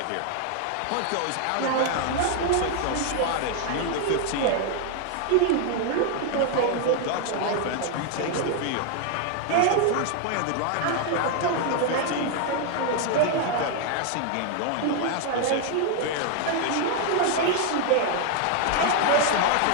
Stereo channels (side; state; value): both; different; correlation 0.00